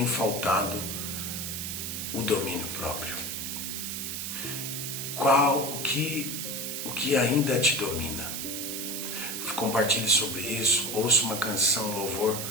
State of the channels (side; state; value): right; noise; hiss, 4 dB below the sound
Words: faltado o domínio próprio? O que ainda te domina? Compartilhe sobre isso, ouça uma canção, louvor,